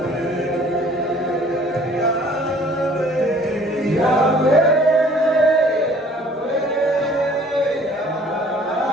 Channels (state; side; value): normal; both; correlation 0.54